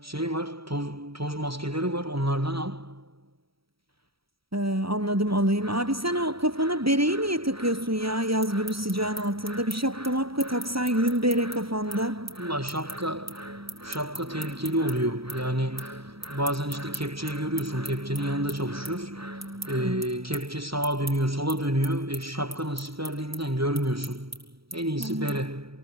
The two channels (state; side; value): late; left; 0.75 ms